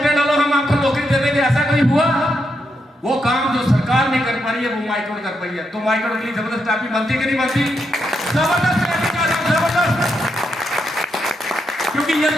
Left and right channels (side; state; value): both; normal; correlation 0.82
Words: डालो, हम आपको नौकरी दे देंगे। ऐसा कोई हुआ? वो काम जो सरकार नहीं कर पा रही है वो माइक्रोड कर पाई है। तो माइक्रोड के लिए जबरदस्त ट्रैफी बनती है कि नहीं बनती? जबरदस्त ट्रैफी का जबरदस्त, क्योंकि ये